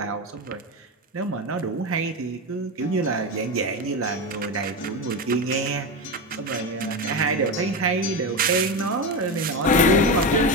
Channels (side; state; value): both; normal; correlation 0.17